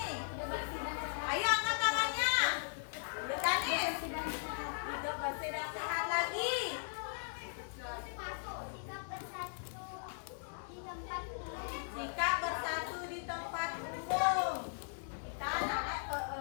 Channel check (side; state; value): right; silent; digital silence